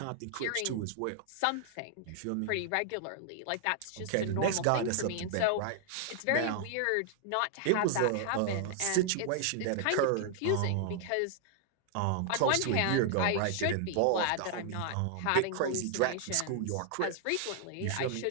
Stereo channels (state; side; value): different; both; correlation 0.00